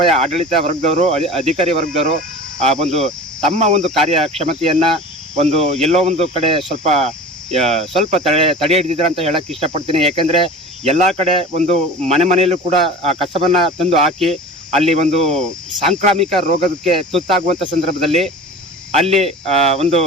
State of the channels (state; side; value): normal; both; correlation 0.36